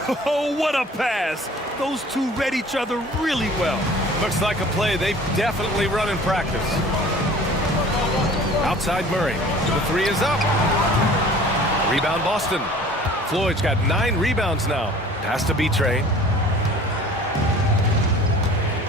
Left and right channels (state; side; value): normal; both; correlation 0.47